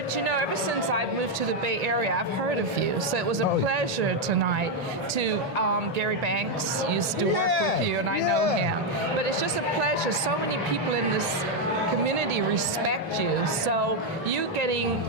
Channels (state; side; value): normal; both; correlation 0.02